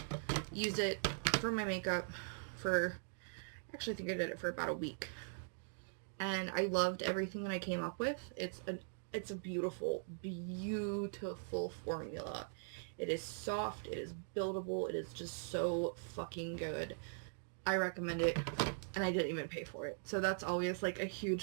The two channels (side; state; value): left; silent; digital silence